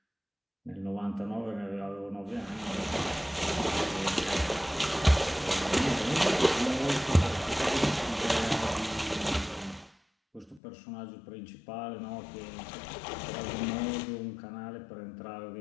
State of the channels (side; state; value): right; drops out; at 10.6 s